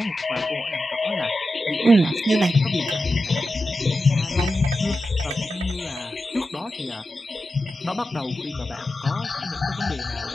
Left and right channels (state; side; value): normal; both; correlation 0.91